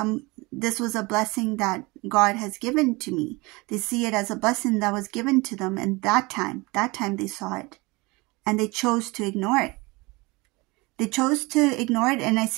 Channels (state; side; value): quieter; left; 24.5 dB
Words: was a blessing that God has given to me. They see it as a blessing that was given to them. And that time they saw it. And they chose to ignore it. They chose to ignore it. And I